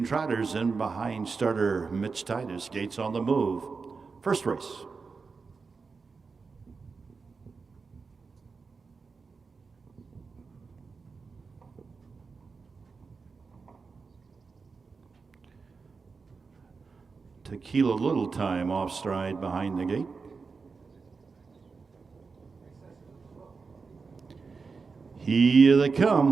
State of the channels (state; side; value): quieter; left; 4.7 dB